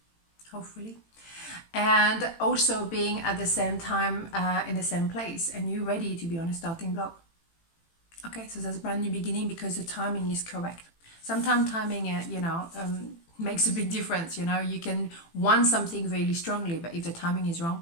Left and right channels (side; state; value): right; late; 18 ms